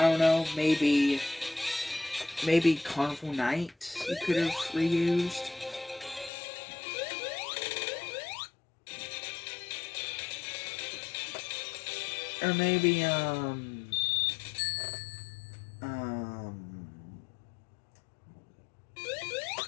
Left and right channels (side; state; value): right; drops out; at 6.3 s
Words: don't know, maybe Carnival Night you could have reused. Or maybe, and